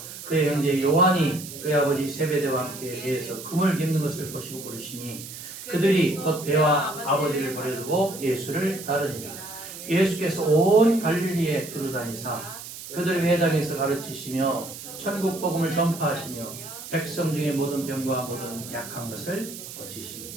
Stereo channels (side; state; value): right; noise; hiss, 12 dB below the sound